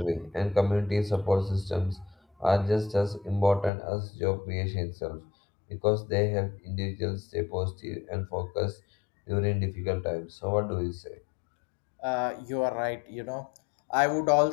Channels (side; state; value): right; drops out; at 3.7 s